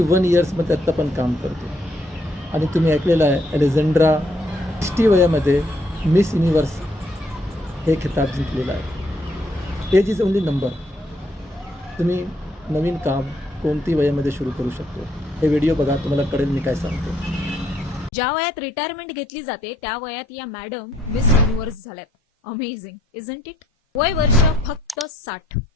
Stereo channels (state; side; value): normal; both; correlation 0.70